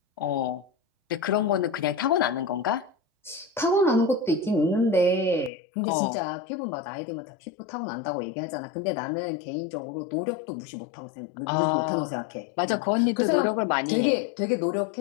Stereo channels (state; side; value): drops out; right; at 5.5 s